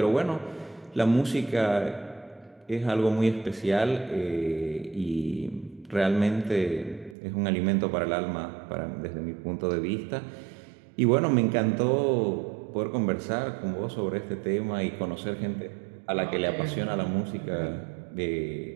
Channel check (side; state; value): left; drops out; at 7.2 s